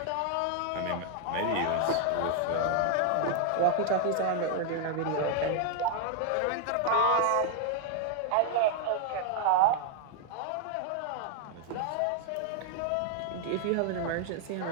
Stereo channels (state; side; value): different; both; correlation 0.00